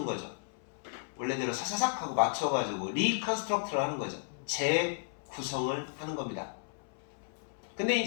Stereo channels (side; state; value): right; silent; 55 dB below the other